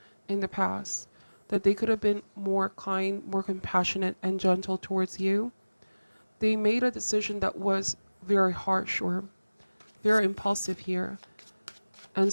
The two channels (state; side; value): inverted; both; correlation -1.00